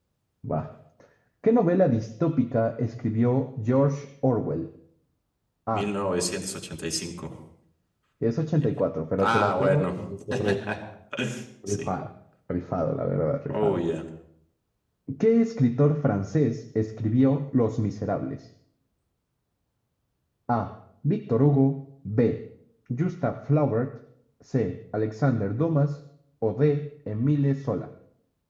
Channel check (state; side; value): identical; both; correlation 1.00